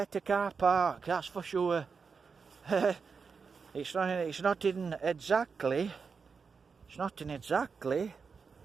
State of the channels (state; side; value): quieter; left; 5.4 dB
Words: car park, that's for sure. It's not in exactly